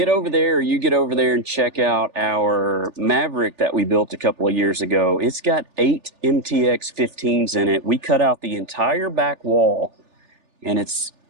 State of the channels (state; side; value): late; left; 3.4 ms